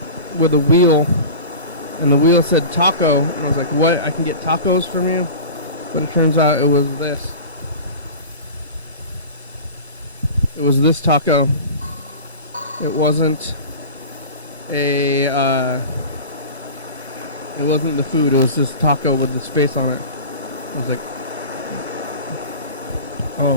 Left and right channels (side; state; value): both; inverted; correlation -0.35